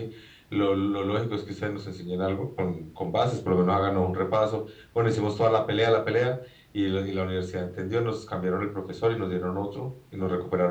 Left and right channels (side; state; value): both; identical; correlation 1.00